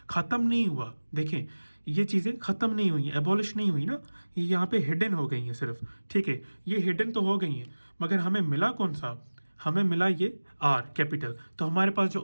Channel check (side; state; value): both; inverted; correlation -1.00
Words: ख़त्म नहीं हुआ। देखें ये चीज़ें ख़त्म नहीं हुई, एबॉलिश नहीं हुई ना, ये यहाँ पे हिडन हो गई हैं सिर्फ। ठीक है, ये हिडन तो हो गई हैं, मगर हमें मिला कौन सा, हमें मिला ये आर कैपिटल। तो हमारे पास जो